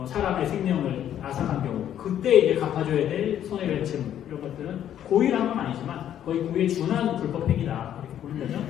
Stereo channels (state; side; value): quieter; right; 10.5 dB